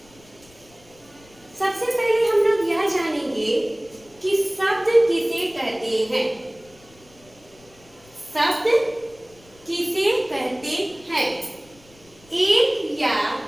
सबसे पहले हम लोग यह जानेंगे कि शब्द किसे कहते हैं। शब्द किसे कहते हैं? एक या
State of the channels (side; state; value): left; noise; rumble, 27 dB below the sound